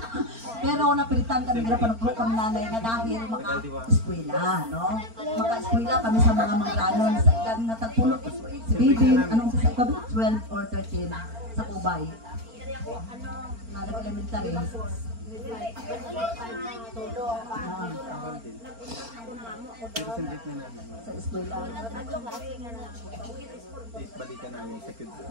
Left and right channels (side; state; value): left; late; 4.4 ms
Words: Pero napilitan kami nila panugro kami nanay na dahil maka-eskwela, no? Maka-eskwela kami sa mga mangganon sa edad na tagpulot si Bibing, anong sa sabi 12 or 13 sa Kubay. Na elementary. Sa eskwela. Balikan namin sa kids.